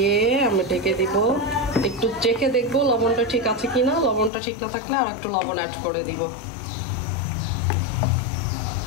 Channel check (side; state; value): right; drops out; at 4.3 s